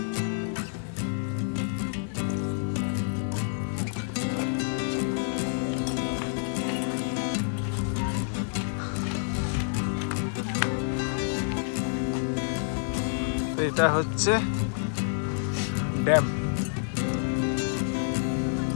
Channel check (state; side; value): silent; right; digital silence